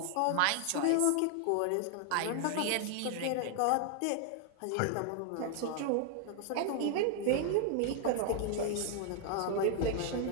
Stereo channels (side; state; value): both; different; correlation 0.00